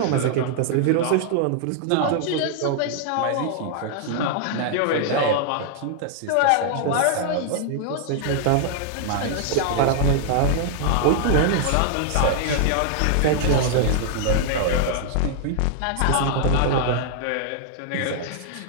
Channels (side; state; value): both; different; correlation -0.01